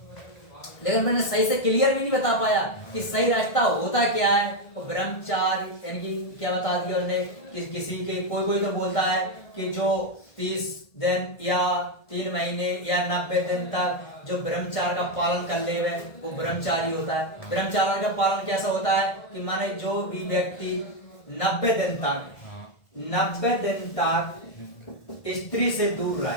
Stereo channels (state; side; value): late; right; 1.7 ms